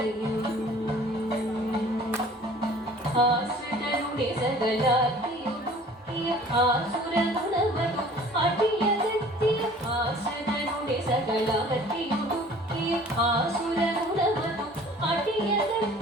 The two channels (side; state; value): both; normal; correlation 0.49